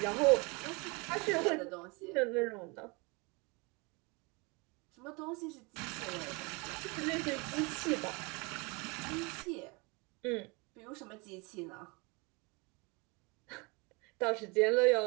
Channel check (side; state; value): left; quieter; 28.6 dB